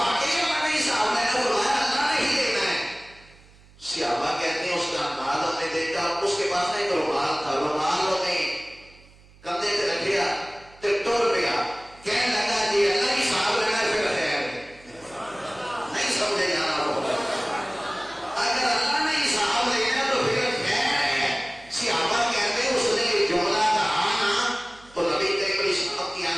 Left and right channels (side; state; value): right; noise; hum, 26 dB below the sound